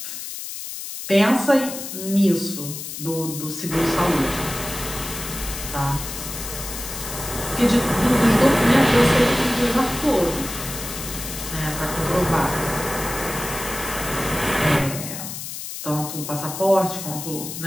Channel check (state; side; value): noise; left; hiss, 8 dB below the sound